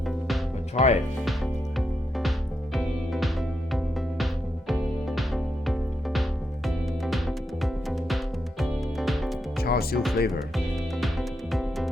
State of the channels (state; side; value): normal; both; correlation 0.83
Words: But try it. Charsiu flavor.